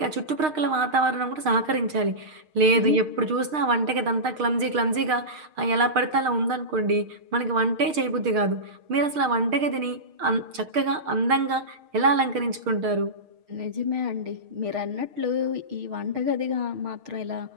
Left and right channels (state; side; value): late; left; 6.5 ms